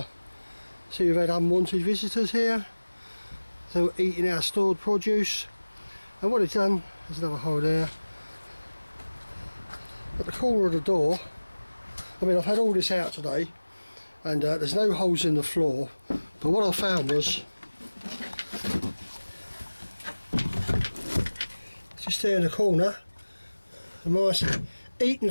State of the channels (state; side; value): inverted; both; correlation -1.00